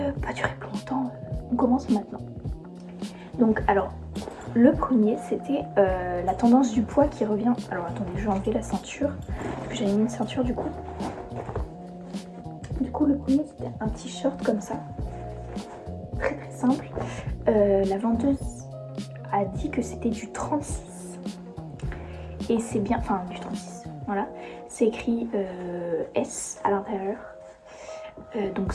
pas durer plus longtemps, on commence maintenant. Donc, alors, le premier, c'était la tendance du poids qui revient. Alors, attendez, je vais enlever la ceinture, parce que j'avais mis une ceinture du coup. Du coup, le premier, c'était un t-shirt comme ça, très très simple. La vendeuse a dit que c'était du 36. Et c'est bien, enfin, du 36, voilà. C'est écrit S à l'intérieur. Donc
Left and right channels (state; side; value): identical; both; correlation 1.00